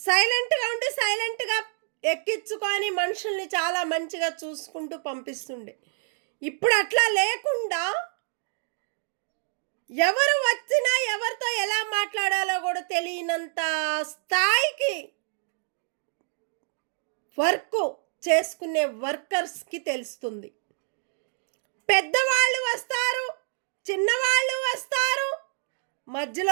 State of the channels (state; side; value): silent; left; 60 dB below the other